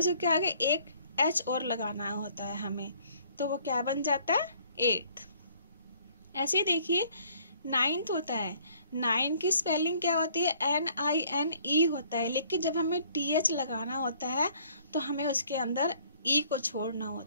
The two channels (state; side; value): inverted; both; correlation -0.59